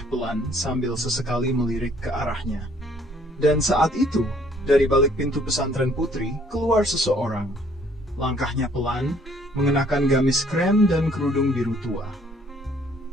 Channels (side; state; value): both; normal; correlation 0.61